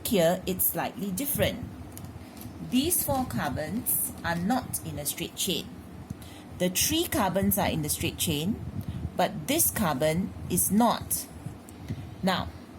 here, it's slightly different. These 4 carbons are not in a straight chain. The 3 carbons are in the straight chain, but this carbon is not. Now,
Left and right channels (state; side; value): identical; both; correlation 1.00